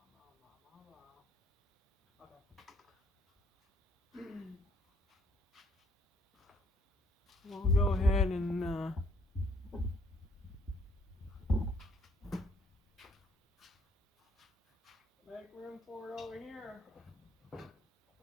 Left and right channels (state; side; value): normal; both; correlation 0.65